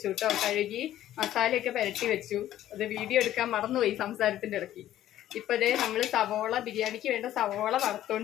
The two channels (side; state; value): right; quieter; 12.8 dB